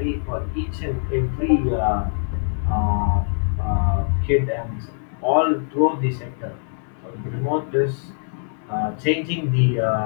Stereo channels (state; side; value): silent; right; digital silence